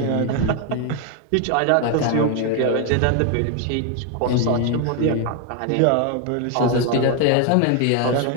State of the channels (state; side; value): different; both; correlation 0.01